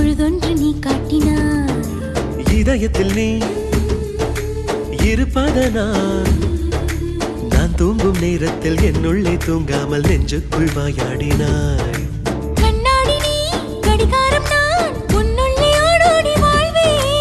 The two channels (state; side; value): identical; both; correlation 1.00